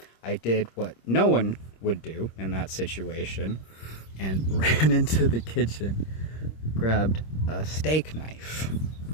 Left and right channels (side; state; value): right; late; 26 ms